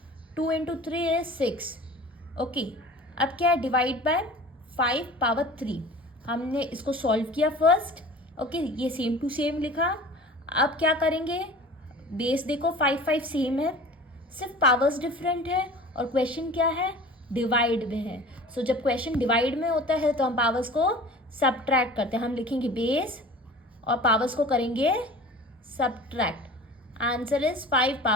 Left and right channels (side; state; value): both; normal; correlation 0.41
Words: 2 इंटू 3 इज 6. ओके, अब क्या है डिवाइड बाय 5 पावर 3. हमने इसको सॉल्व किया फर्स्ट. ओके, ये सेम टू सेम लिखा. अब क्या करेंगे, बेस देखो 5 5 सेम है, सिर्फ पावर्स डिफरेंट है और क्वेश्चन क्या है डिवाइड में है. सो जब क्वेश्चन डिवाइड में होता है तो हम पावर्स को सब्ट्रैक्ट करते हैं. हम लिखेंगे बेस और पावर्स को करेंगे subtract. Answer is 5